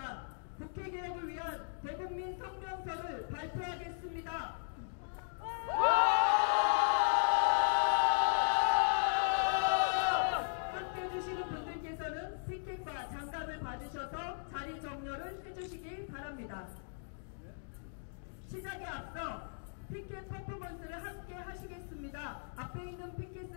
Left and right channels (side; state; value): right; silent; digital silence